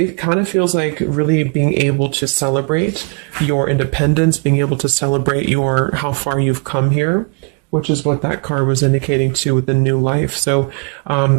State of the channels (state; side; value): quieter; left; 33.8 dB